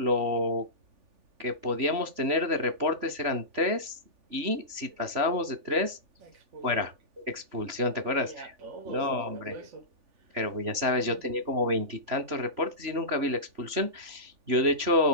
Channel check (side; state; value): left; late; 3.4 ms